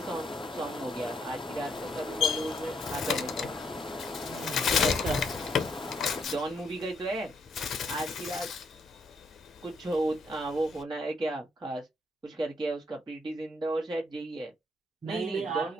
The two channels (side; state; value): both; normal; correlation 0.74